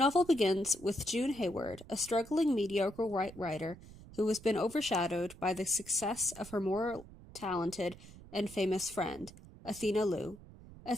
begins with June Hayward, a struggling mediocre white writer who has been overshadowed by the success of her more talented and famous friend, Athena Liu.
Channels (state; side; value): noise; right; rumble, 18 dB below the sound